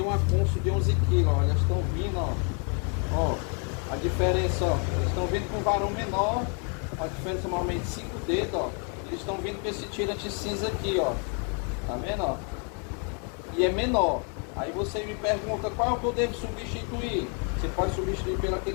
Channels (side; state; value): right; quieter; 39.1 dB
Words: uma Kunso de 11 kg, ó. Elas estão vindo, ó. Ó, a diferença, ó. Eles estão vindo com varão menor. A diferença normalmente 5 dedos, ó. Eles estão vindo com esse tirante cinza aqui, ó. Tá vendo, ó? E é menor. Aí você me pergunta qual é o que eu devo substituir. Você pode substituir pelo